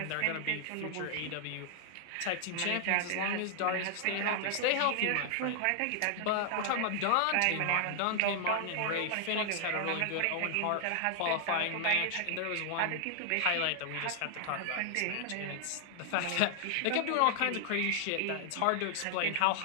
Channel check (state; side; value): different; both; correlation 0.00